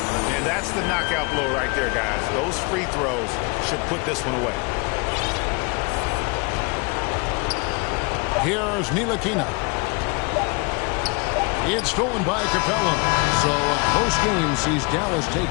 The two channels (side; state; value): right; quieter; 29.6 dB